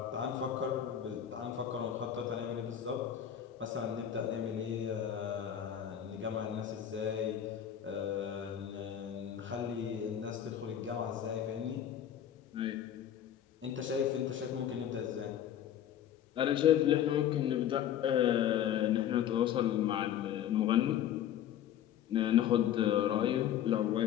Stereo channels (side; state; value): right; quieter; 10.2 dB